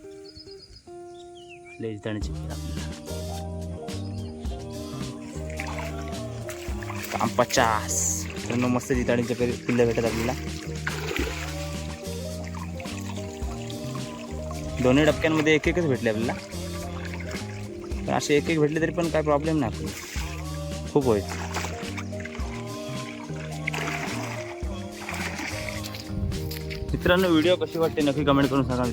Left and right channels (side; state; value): both; identical; correlation 1.00